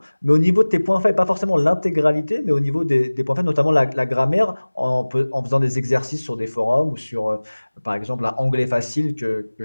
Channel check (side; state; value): both; inverted; correlation -1.00